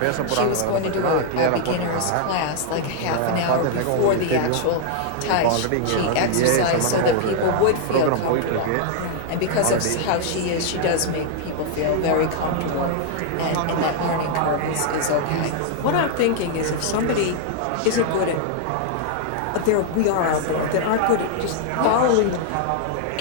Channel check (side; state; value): both; different; correlation 0.00